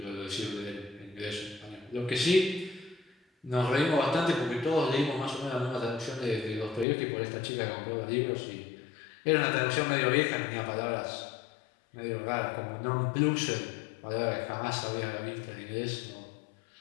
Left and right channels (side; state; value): right; drops out; at 6.9 s